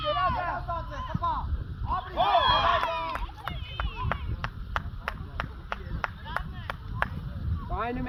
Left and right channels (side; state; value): both; identical; correlation 1.00